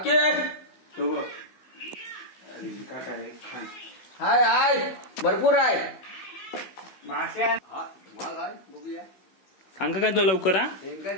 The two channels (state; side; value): late; right; 16 ms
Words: हो बघ. काय काय खान हाय हाय भरपूर आहे. माश्या बघूया सांगा काय तो लवकर हा.